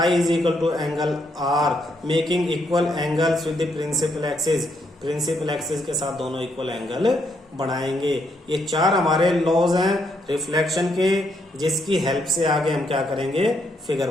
is equal to angle R, making equal angles with the principal axis, principal axis के साथ दोनों इक्वल एंगल बनाएंगे। ये 4 हमारे लॉज हैं रिफ्लेक्शन के, जिसकी हेल्प से आगे हम क्या करेंगे, फिगर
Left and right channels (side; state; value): both; normal; correlation 0.75